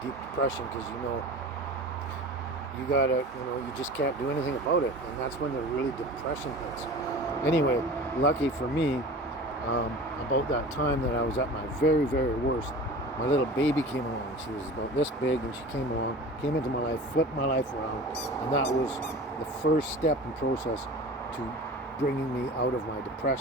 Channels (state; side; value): normal; both; correlation 0.37